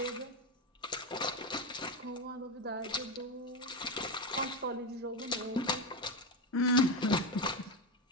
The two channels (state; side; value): normal; both; correlation 0.13